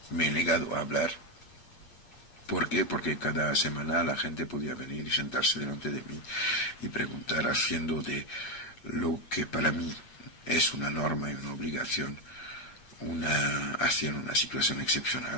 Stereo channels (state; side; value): late; right; 8.6 ms